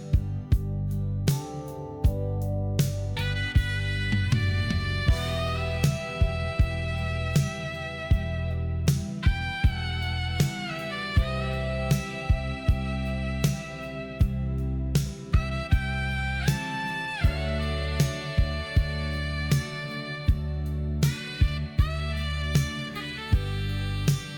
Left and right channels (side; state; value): both; identical; correlation 1.00